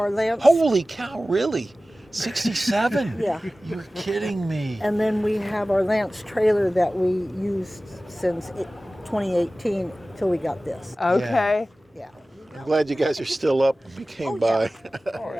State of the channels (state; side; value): normal; both; correlation 0.97